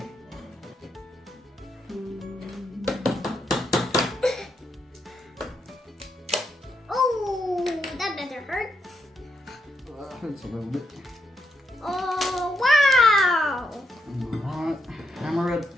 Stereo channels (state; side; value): normal; both; correlation 0.80